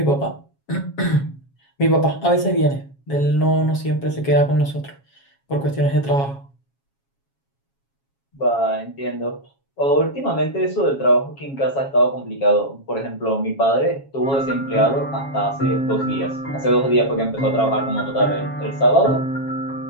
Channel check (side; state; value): right; late; 7.3 ms